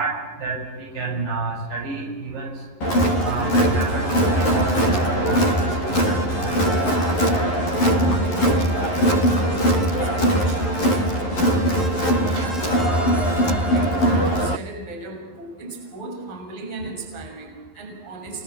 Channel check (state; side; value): late; right; 11 ms